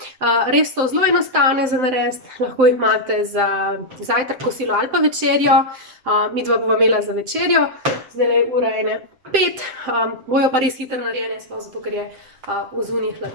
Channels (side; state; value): left; late; 7.7 ms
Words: Res so zelo enostavne za narediti, lahko jih imate za zajtrk, kosilo ali pa večerjo. Midva bova imela za večerjo, zdaj je ura 1:05, bojo pa res hitro narejene, sploh zato, ker je vzunaj